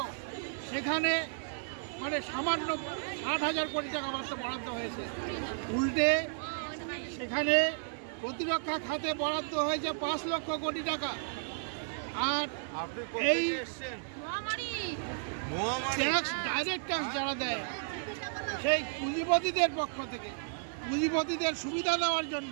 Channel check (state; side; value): silent; left; 56 dB below the other